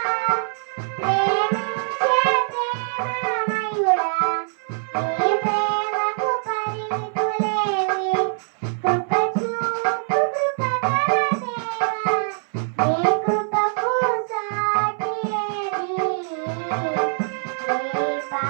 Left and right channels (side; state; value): left; silent; 61 dB below the other